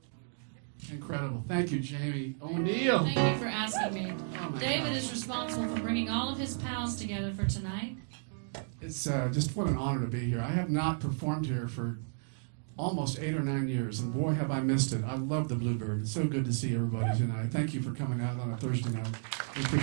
Incredible. Thank you, Jamie O'Neill. Thank you for asking me. Oh my David gosh. is responsible for bringing all of his pals together for tonight. It's just what an honor to be here. I have not performed here for almost 8 or 9 years, and boy, have I missed it. I love the Bluebird. It's so good to see everybody tonight. Thank you for coming out on a Thursday night. We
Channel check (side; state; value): left; silent; digital silence